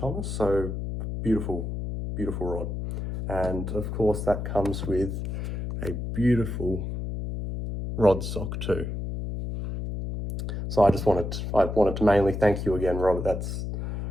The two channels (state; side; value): noise; left; hum, 4 dB below the sound